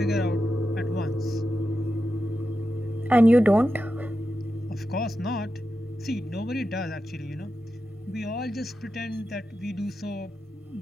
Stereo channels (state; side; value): normal; both; correlation 0.90